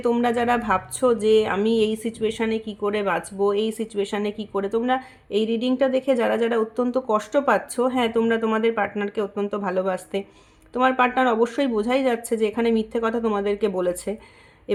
তোমরা যারা ভাবছো যে আমি এই সিচুয়েশানে কি করে বাঁচবো, এই সিচুয়েশানে কি করে, তোমরা এই রিডিংটা দেখে যারা যারা অত্যন্ত কষ্ট পাচ্ছ, হ্যাঁ তোমরা তোমাদের পার্টনারকে অত্যন্ত ভালোবাসতে, তোমার পার্টনার অবশ্যই বোঝাই যাচ্ছে যে এখানে মিথ্যে কথা তোমাদেরকে বলেছে,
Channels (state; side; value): identical; both; correlation 1.00